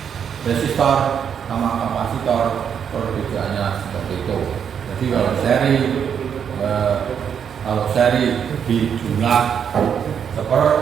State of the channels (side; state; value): left; quieter; 7.8 dB